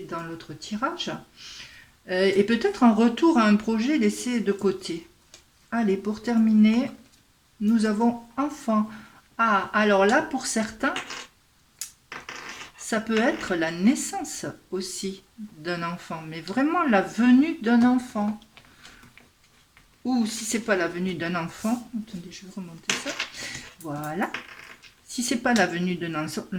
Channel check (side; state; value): both; identical; correlation 1.00